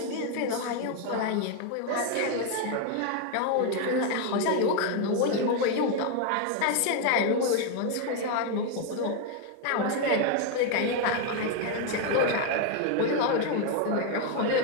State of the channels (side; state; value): both; different; correlation 0.01